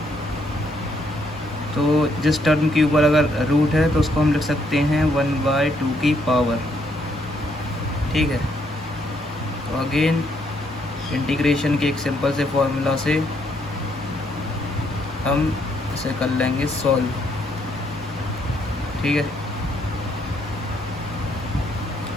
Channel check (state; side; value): normal; both; correlation 0.72